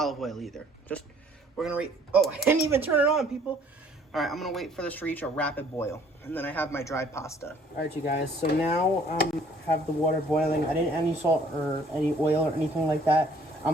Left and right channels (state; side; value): normal; both; correlation 0.59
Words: oil either. Just, we're going to oh, I didn't even turn it on, people. All right, I'm going to wait for this to reach a rapid boil. And then I have my dried pasta. All right, you guys. So now have the water boiling. I didn't add any salt or any oil or anything like that.